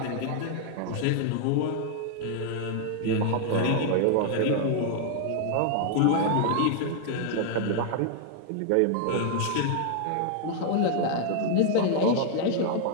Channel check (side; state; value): both; different; correlation -0.01